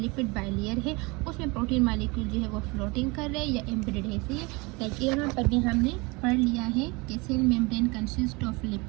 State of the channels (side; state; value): left; quieter; 26.3 dB